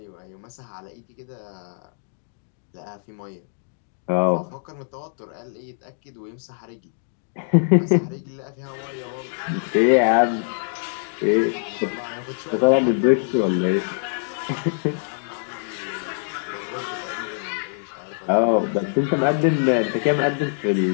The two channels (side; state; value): right; silent; digital silence